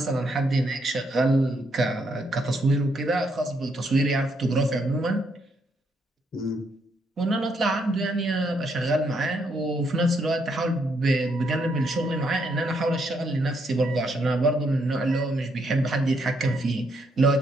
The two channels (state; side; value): normal; both; correlation 0.75